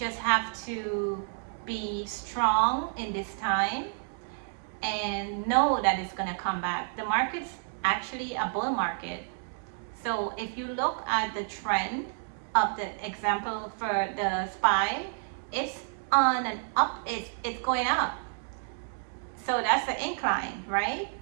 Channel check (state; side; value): silent; left; 58 dB below the other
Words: have to be strong in this time and know that it's going to come back. The market's actually a bull market. So if you look at the trend of the example for the SPY, it's on an up, it's going up. So that's the incline, right?